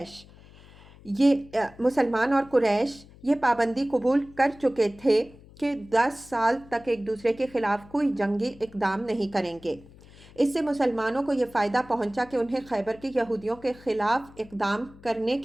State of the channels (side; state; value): left; noise; hum, 22 dB below the sound